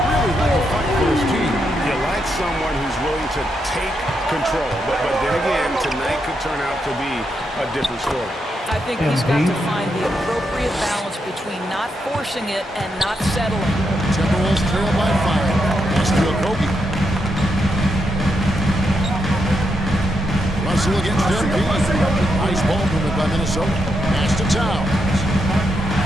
really had to fight for his team. You like someone who's willing to take control, but then again, tonight could turn out to be a different story. I think he's got to find the appropriate balance between not forcing it and not settling. Timberwolves trail by 5. Pass to Okogie. Russell against MP. Nice ball movement by Minnesota. Pass to Towns.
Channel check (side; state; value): both; normal; correlation 0.82